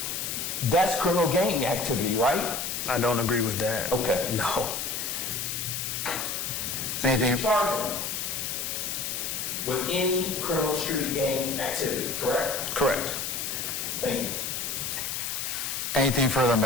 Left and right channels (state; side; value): noise; left; hiss, 3 dB below the sound